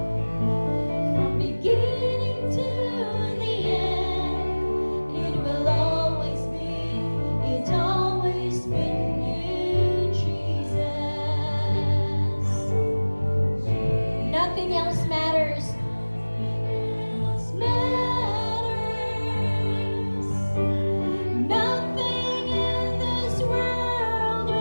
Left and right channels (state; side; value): inverted; both; correlation -1.00